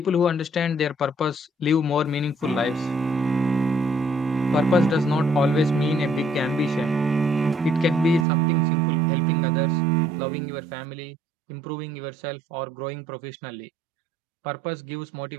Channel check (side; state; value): left; drops out; at 8.2 s